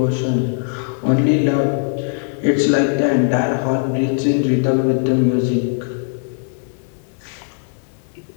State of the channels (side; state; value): right; silent; 66 dB below the other